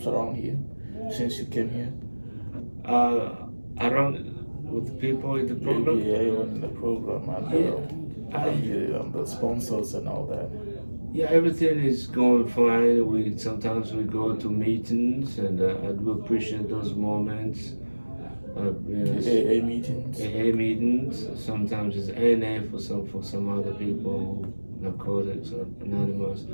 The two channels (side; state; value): both; inverted; correlation -1.00